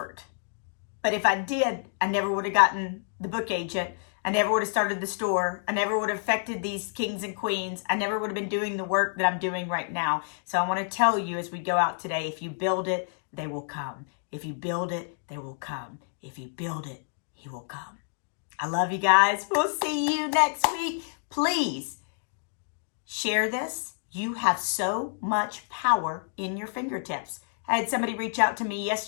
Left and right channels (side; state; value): right; silent; digital silence